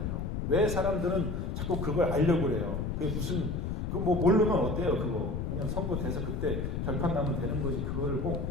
왜 사람들은 자꾸 그걸 알려고 그래요? 그게 모르면 어때요, 그거? 그냥 선거 돼서 그때 결판 나면 되는 거지. 그거를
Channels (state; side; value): noise; left; rumble, 2 dB below the sound